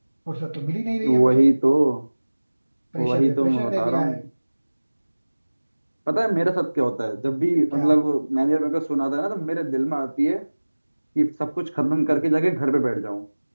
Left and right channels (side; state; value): both; inverted; correlation -1.00